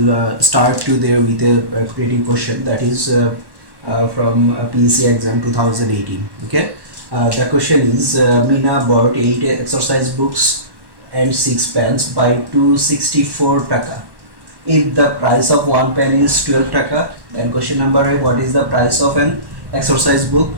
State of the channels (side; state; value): left; late; 1.1 ms